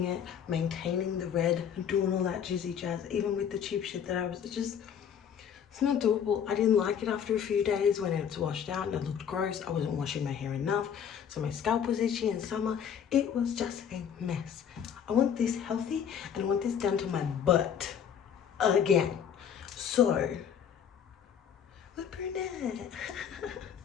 it, maintaining the red, doing all that juicy jazz, even with the cheap shit that I was it's not doable. I didn't like it after a few days when it's washed out and it looked gross. I wasn't washing my hair enough, so my scalp was itchy in summer. It was just a mess. I want this healthy and I want this down to my butt again. So, we're brunette.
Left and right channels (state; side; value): quieter; right; 8.2 dB